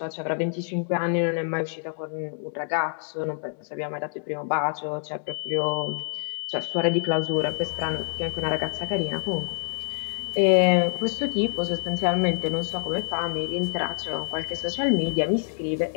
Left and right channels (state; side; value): silent; right; digital silence